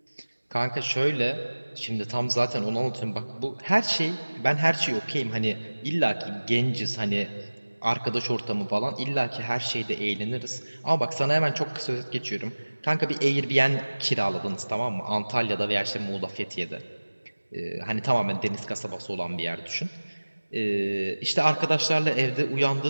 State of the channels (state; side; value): inverted; both; correlation -1.00